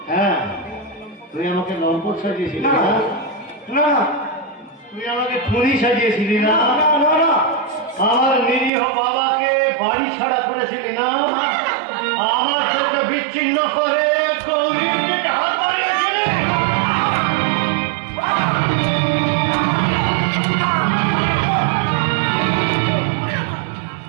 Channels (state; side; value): drops out; left; at 8.7 s